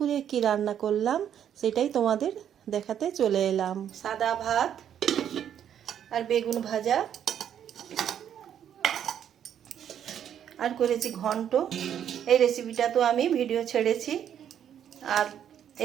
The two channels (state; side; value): quieter; left; 9.4 dB